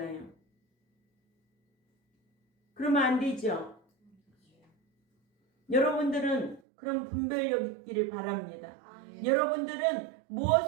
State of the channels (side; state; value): left; drops out; at 6.6 s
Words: 그러면 안 되죠. 여러분들은 그런 분별력 있기를 바랍니다. 여러분들은